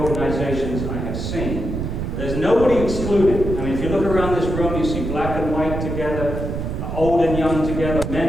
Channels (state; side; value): noise; right; rumble, 4 dB below the sound